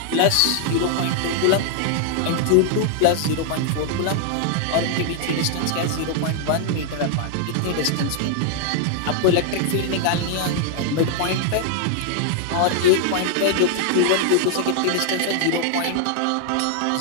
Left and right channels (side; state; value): both; different; correlation 0.00